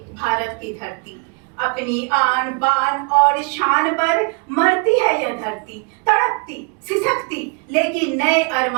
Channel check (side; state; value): left; quieter; 34.4 dB